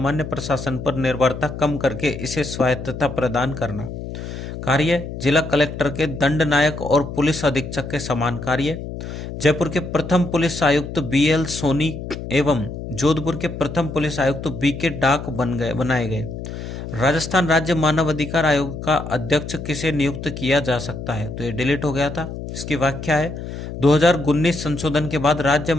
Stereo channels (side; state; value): left; noise; hum, 8 dB below the sound